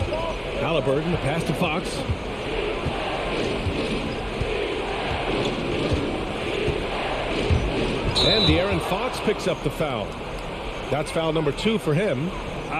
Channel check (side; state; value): both; identical; correlation 1.00